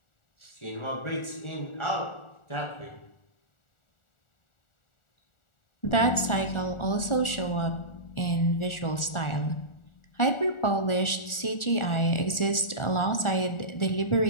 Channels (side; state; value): right; late; 1.4 ms